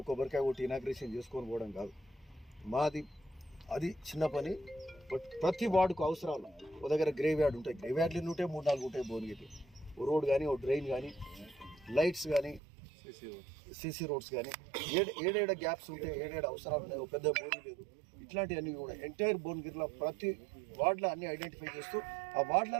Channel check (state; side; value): drops out; left; at 12.6 s